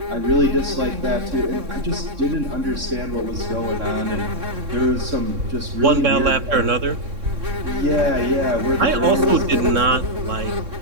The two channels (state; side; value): late; left; 3.6 ms